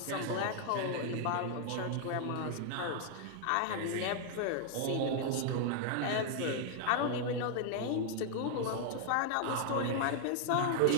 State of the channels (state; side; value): different; both; correlation 0.00